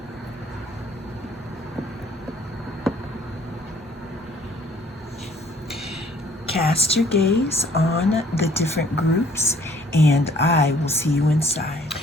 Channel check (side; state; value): both; normal; correlation 0.58